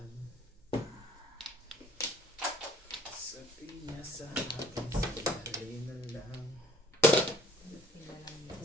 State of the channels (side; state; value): both; normal; correlation 0.54